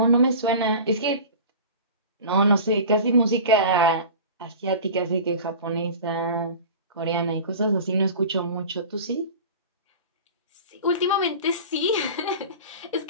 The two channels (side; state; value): both; inverted; correlation -0.36